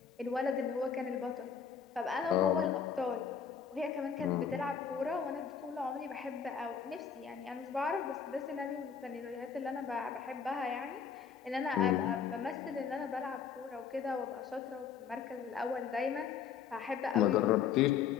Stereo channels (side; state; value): right; quieter; 7.0 dB